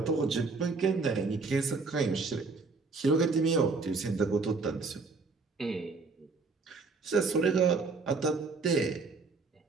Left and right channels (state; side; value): quieter; left; 4.2 dB